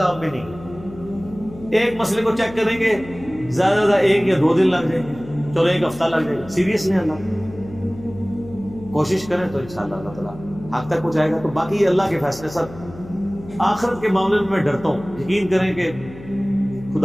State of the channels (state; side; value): noise; left; hum, 17 dB below the sound